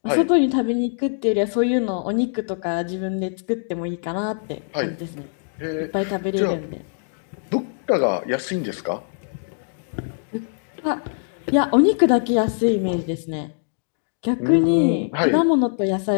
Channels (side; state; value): right; silent; digital silence